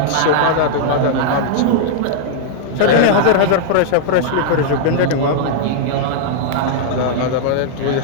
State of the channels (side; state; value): both; different; correlation -0.01